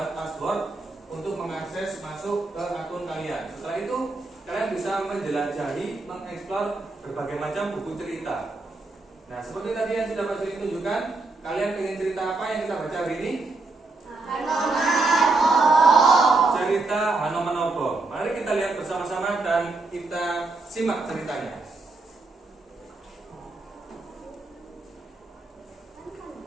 password untuk mengakses masuk ke akun kalian. Setelah itu kalian bisa menjelajahi, mengeksplor berbagai macam buku cerita. Nah, seperti tadi yang sudah Pak Juli tunjukkan, kalian ingin cerita apa yang kita baca hari ini? Cerita Hanomanobo. Mari kita lihat bersama-sama dan kita simak ceritanya.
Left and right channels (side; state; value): left; quieter; 3.5 dB